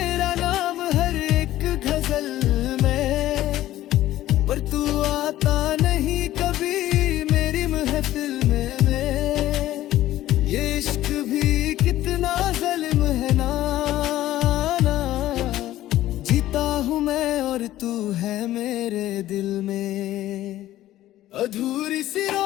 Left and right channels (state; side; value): quieter; right; 14.4 dB